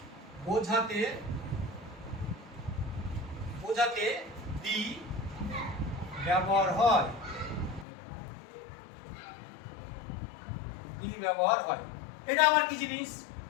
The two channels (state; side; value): drops out; right; at 7.9 s